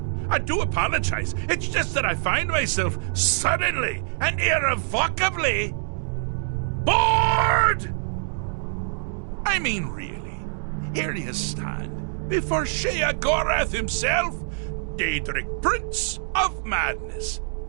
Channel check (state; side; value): silent; left; digital silence